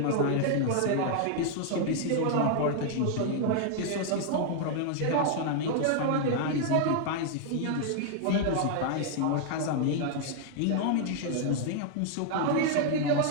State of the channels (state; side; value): different; both; correlation 0.00